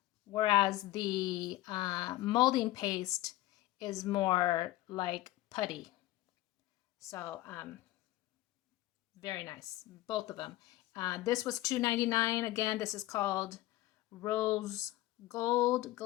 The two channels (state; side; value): quieter; right; 16.7 dB